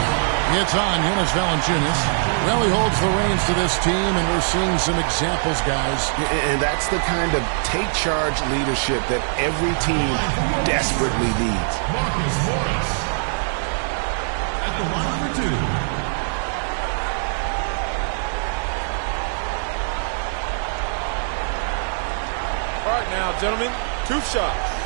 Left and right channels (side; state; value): left; silent; digital silence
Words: It's on Jonas Valanciunas. Well, he holds the reins to this team, and we're seeing some examples, guys. And that's the kind of take-charge leadership that every team desperately needs. Marcus Morris at the line for two. All right, now, gentlemen, 2 shots.